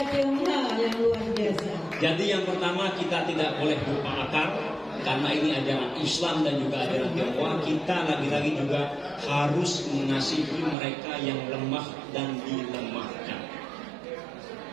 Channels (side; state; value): left; drops out; at 10.8 s